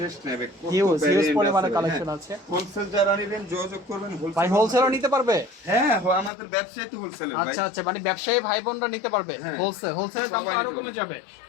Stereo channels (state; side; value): drops out; right; at 6.3 s